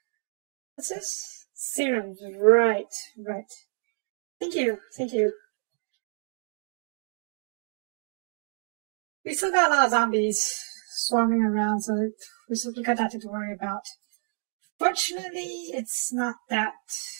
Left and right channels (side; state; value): left; silent; digital silence